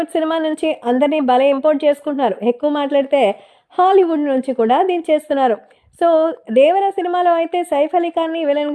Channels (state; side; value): identical; both; correlation 1.00